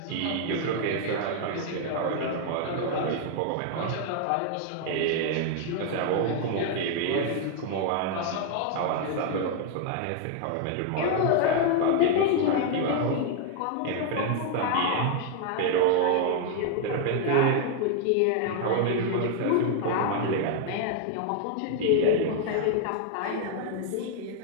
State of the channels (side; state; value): both; different; correlation 0.00